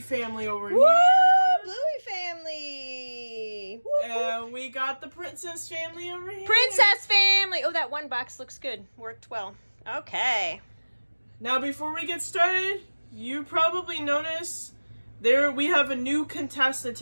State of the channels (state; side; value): inverted; both; correlation -1.00